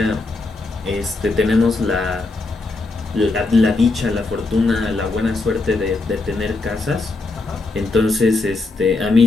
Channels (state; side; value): quieter; right; 3.4 dB